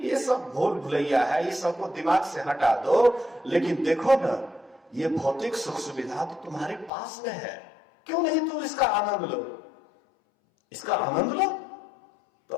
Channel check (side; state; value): right; drops out; at 6.9 s